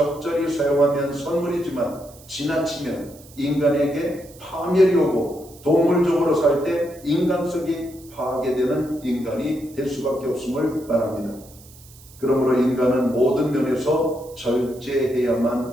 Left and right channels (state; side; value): noise; right; hiss, 23 dB below the sound